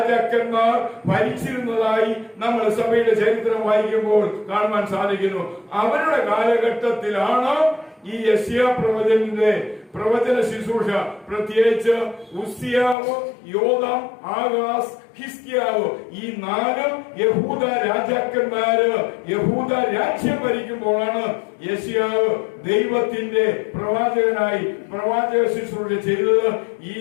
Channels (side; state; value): right; drops out; at 13.0 s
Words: ഭരിച്ചിരുന്നതായി നമ്മൾ സഭയുടെ ചരിത്രം വായിക്കുമ്പോൾ കാണുവാൻ സാധിക്കുന്നു. അവരുടെ കാലഘട്ടത്തിലാണ് ഈ യെശയ്യാ പ്രവചനത്തിന്റെ പ്രവചന ശുശ്രൂഷ, പ്രത്യേകിച്ച് ഉസ്സിയാവ്, യോഥാം, ആഹാസ്, ഹിസ്കിയാവ് ഈ 4 യഹൂദ രാജാക്കന്മാര് യഹൂദ രാജ്യം ഭരിക്കുമ്പോഴാണ് യെശയ്യാവ് ദൈവത്തിന്റെ പ്രവാചകനായി പ്രവാചക ശുശ്രൂഷ ചെയ്തത്. ഈ